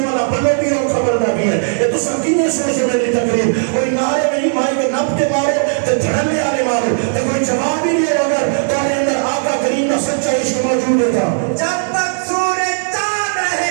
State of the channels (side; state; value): left; silent; digital silence